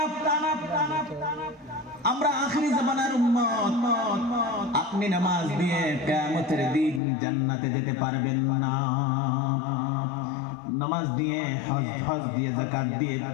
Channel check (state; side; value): drops out; right; at 7.0 s